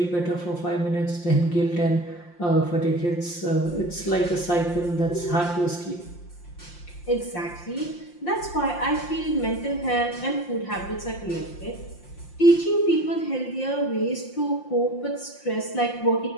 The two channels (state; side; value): late; right; 5.7 ms